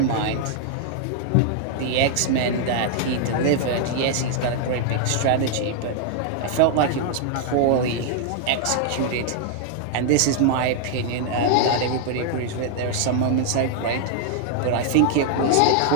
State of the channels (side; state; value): both; different; correlation 0.00